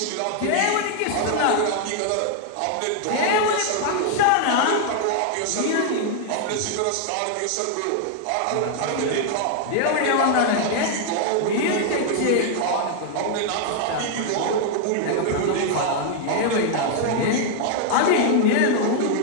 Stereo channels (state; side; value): different; both; correlation 0.00